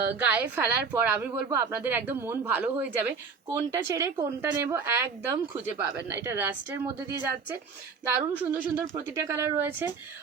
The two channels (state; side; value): quieter; left; 5.3 dB